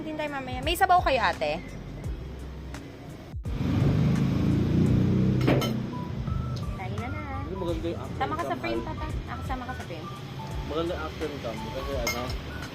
din tayo mamaya. May sabaw kayo, ate? Tayo na na. Hindi maganda yung after Sama ka sa cam, frame, Al. tata. Sama ka sa frame. Maganda yung after cam. Kasi ano,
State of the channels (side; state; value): both; identical; correlation 1.00